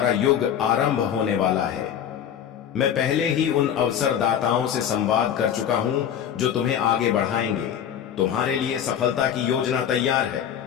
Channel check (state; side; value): quieter; right; 9.3 dB